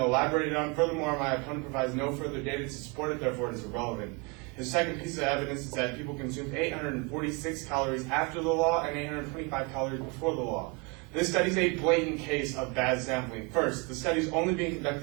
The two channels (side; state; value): left; quieter; 30.4 dB